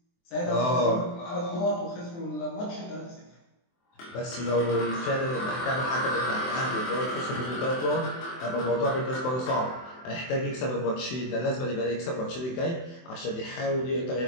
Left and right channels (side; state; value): right; late; 23 ms